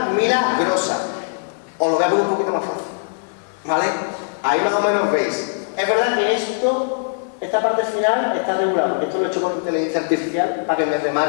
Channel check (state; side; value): silent; right; digital silence